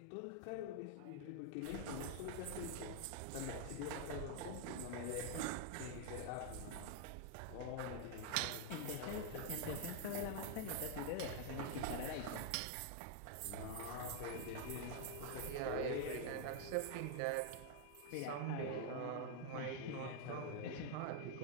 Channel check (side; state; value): both; different; correlation 0.00